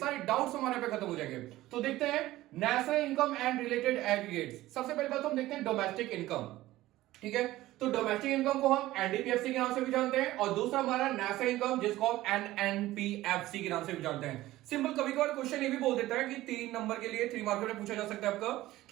डाउट्स हमारे पे खत्म हो जाएंगे। तो देखते हैं national income and related aggregates. सबसे पहले बात हम देखते हैं डोमेस्टिक इनकम, ठीक है। तो डोमेस्टिक इनकम को हम एनडीपीएफसी के नाम से भी जानते हैं, और दूसरा हमारा नेशनल इनकम जिसको हम एनएनपीएफसी के नाम से भी जानते हैं। सिंपल कभी कभार क्वेश्चन ये भी बोल देता है कि 3 नंबर के लिए 3 मार्क में पूछा जा सकता है आपका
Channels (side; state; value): left; quieter; 16.3 dB